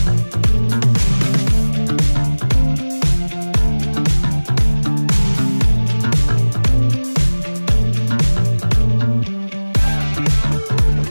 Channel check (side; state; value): both; inverted; correlation -1.00